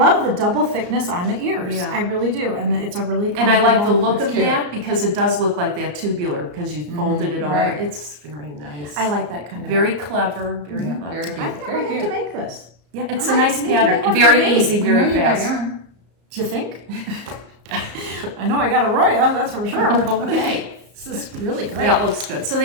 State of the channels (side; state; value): left; late; 34 ms